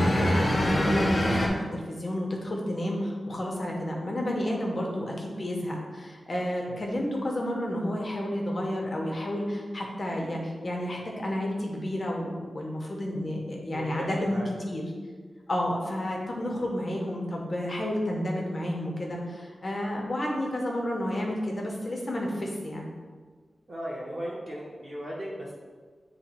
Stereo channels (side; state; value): both; normal; correlation 0.93